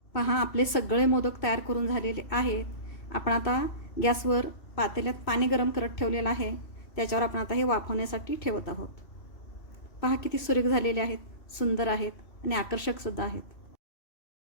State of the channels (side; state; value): right; late; 2.6 ms